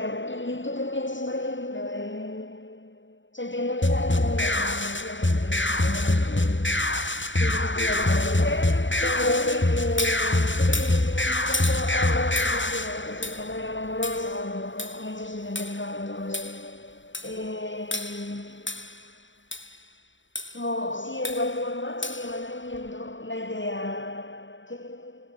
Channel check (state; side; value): late; right; 0.55 ms